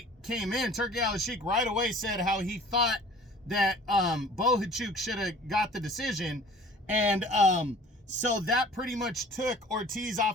came in, Turki Al-Sheikh right away said how he thought that Bohachuk should have got the decision, and so that pretty much took Ortiz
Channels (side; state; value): both; normal; correlation 0.48